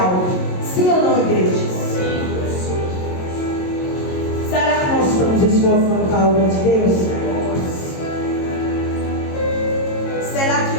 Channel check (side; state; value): right; late; 22 ms